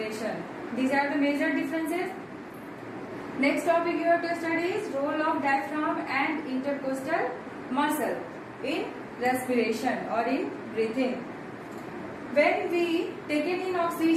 These are the major differences. Next topic you have to study is role of diaphragm and intercostal muscle in respiration or in breathing. When we take in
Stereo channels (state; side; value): identical; both; correlation 1.00